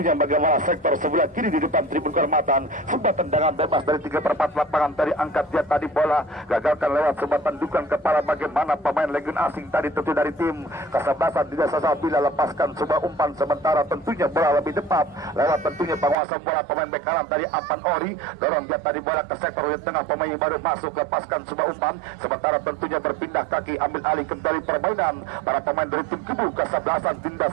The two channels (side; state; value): left; drops out; at 16.2 s